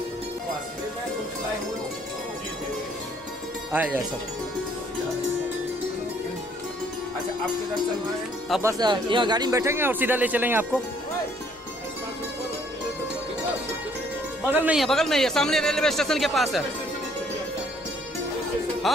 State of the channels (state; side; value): normal; both; correlation 0.63